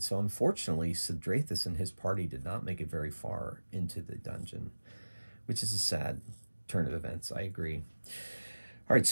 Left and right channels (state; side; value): inverted; both; correlation -1.00